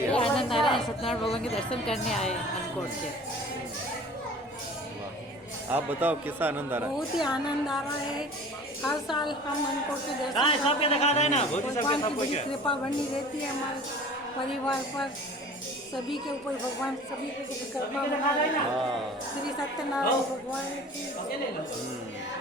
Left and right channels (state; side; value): normal; both; correlation 0.44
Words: सत्यनारायण भगवान के दर्शन करने आए अन्नकूट के। आप बताओ कैसा आनंद आ रहा है? बहुत ही आनंद आ रहा है। हर साल हम अन्नकूट के दर्शन सबके दिखा देना, भगवान की कृपा बनी रहती है हमारे परिवार पर, सभी के ऊपर भगवान सभी को कृपा बना। श्री सत्यनारायण भगवान की।